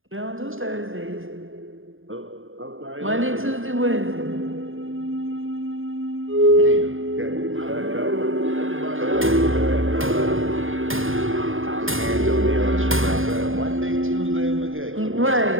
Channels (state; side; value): late; left; 0.59 ms